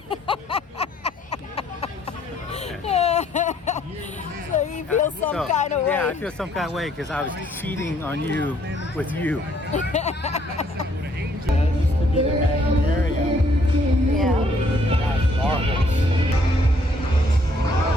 So he feels some kind of way. Yeah, I feel some kind of way because I was cheating on you with you. This could be the main area. Yeah. That's marvelous.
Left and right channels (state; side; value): normal; both; correlation 0.66